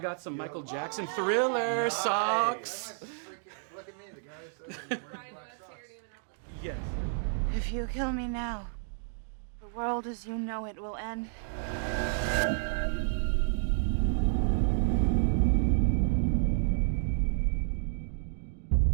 got some Michael Jackson Whoa. Thriller I socks. might freaking look at me. The guy says I'm wearing black socks. Yes. If you kill me now, the world as you know it will end.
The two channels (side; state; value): left; silent; digital silence